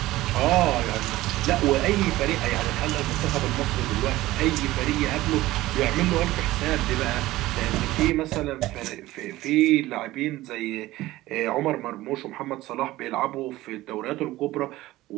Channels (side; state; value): left; quieter; 17.1 dB